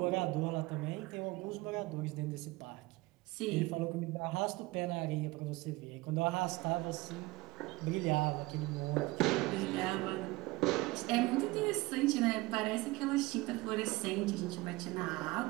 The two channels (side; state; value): left; quieter; 21.3 dB